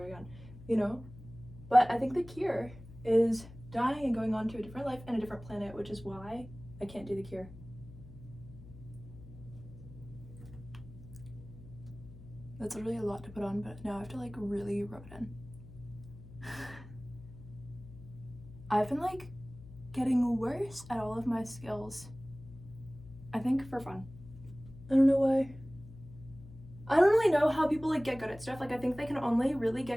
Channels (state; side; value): noise; left; hum, 17 dB below the sound